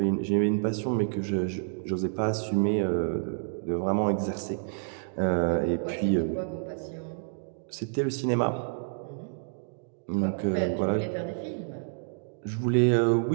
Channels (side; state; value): left; silent; digital silence